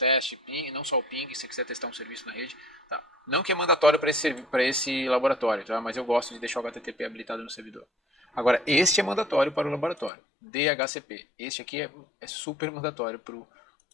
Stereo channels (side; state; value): right; drops out; at 10.1 s